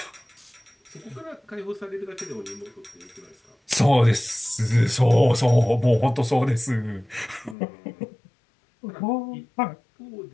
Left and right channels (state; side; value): drops out; right; at 7.6 s